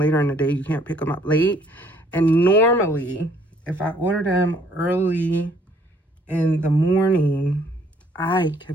in the day, you can't pick them up late. And normally, if I order them early in the morning, I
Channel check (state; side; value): normal; both; correlation 0.62